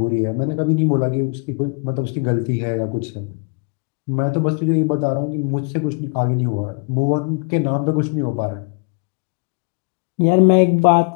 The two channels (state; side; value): quieter; right; 35.7 dB